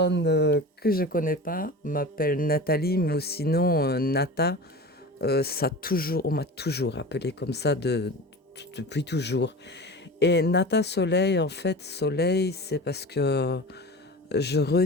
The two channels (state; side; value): normal; both; correlation 0.33